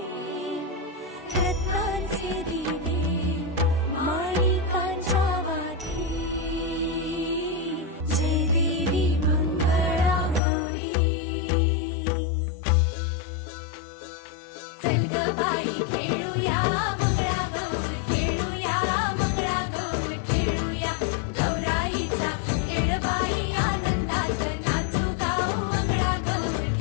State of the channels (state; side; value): drops out; right; at 10.4 s